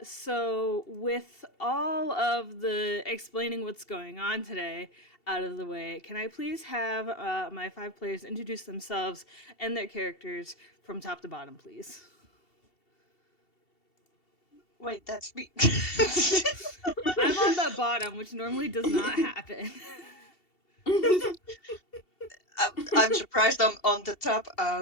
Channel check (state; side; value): late; right; 2.7 ms